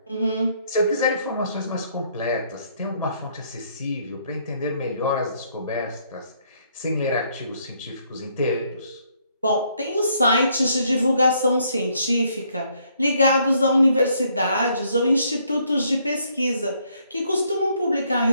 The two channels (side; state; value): both; inverted; correlation -0.69